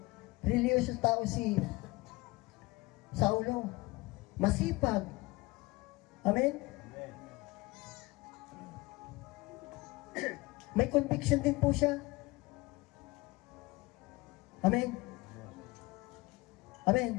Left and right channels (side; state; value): right; quieter; 22.2 dB